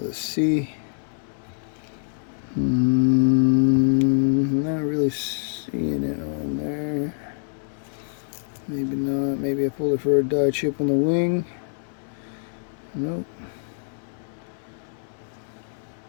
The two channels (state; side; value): silent; right; digital silence